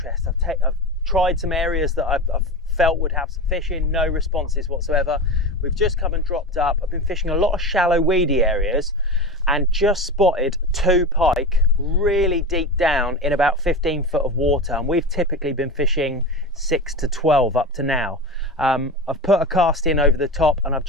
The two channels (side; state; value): both; normal; correlation 0.24